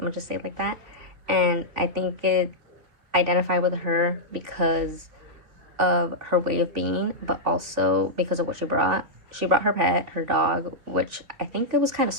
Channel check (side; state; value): left; late; 3.3 ms